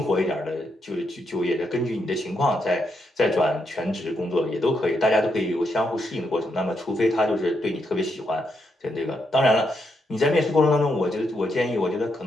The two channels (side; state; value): both; normal; correlation 0.80